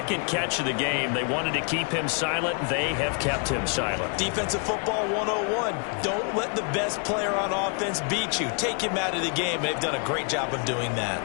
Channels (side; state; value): right; quieter; 39.7 dB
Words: catch of the game. They wanted to keep him silent. They have kept him silent. Defensive football 101. Don't let the best player on offense beat you. Take him out of the game. They've done a great job of doing that.